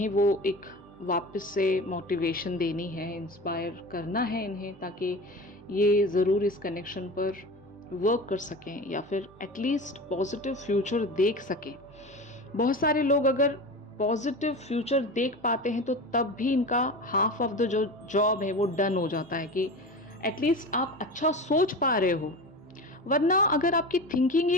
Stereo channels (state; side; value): normal; both; correlation 0.30